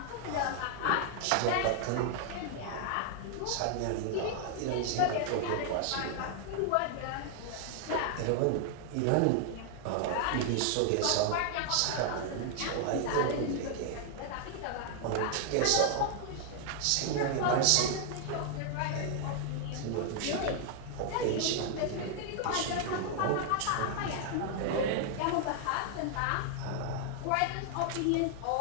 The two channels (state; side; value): different; both; correlation 0.00